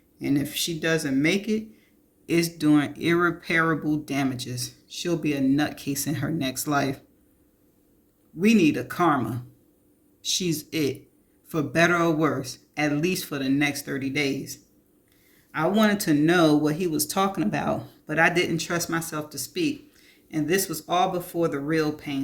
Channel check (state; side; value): identical; both; correlation 1.00